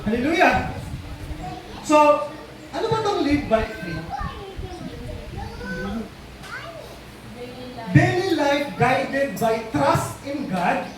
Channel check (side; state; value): both; identical; correlation 1.00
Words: Hallelujah! So, ano ba itong live by faith? Daily life guided by trust in God,